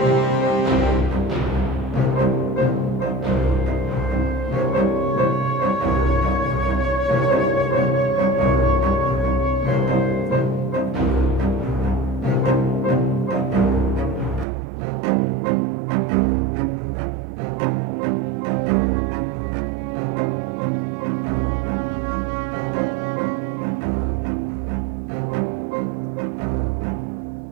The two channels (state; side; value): drops out; left; at 14.5 s